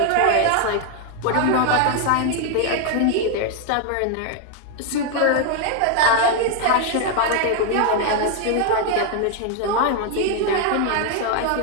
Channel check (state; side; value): different; both; correlation 0.00